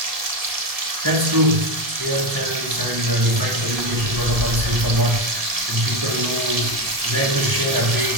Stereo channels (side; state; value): left; late; 1.7 ms